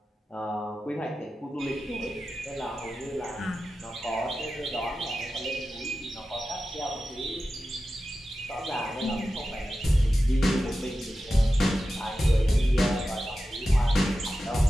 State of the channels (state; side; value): normal; both; correlation 0.93